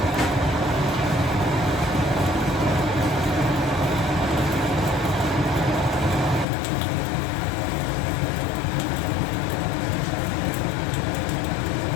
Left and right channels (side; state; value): right; drops out; at 6.5 s